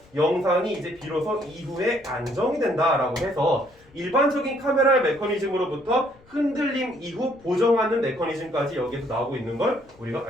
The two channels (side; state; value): left; noise; rumble, 28 dB below the sound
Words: 영상이 이제 비로소 이후에 안정이 된다라고 해서 일반적인 카메라의 메커니즘으로부터 흔들림 이후 보정하는 메커니즘까지 여기에서 나오고 있는 걸 우리가